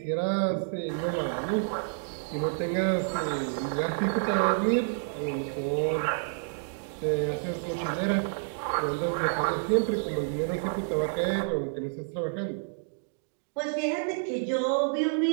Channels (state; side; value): silent; left; digital silence